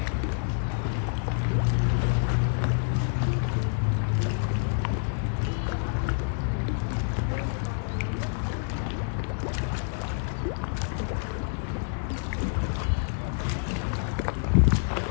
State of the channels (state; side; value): silent; right; 56 dB below the other